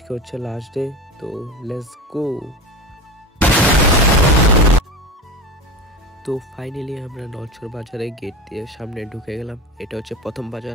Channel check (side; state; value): both; normal; correlation 0.28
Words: হচ্ছে লাস্ট ডে, তো লেটস গো। তো ফাইনালি আমরা নলছর বাজারে গেট দিয়ে সামনে ঢুকে গেলাম। এটা হচ্ছে প্রথম